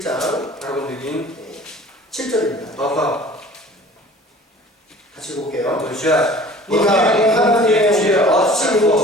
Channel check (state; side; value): normal; both; correlation 0.46